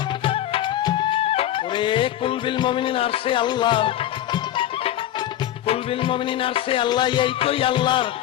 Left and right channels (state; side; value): quieter; right; 12.6 dB